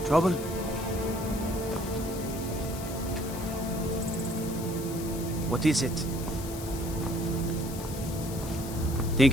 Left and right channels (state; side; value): noise; left; hiss, 12 dB below the sound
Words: Trouble? What is it?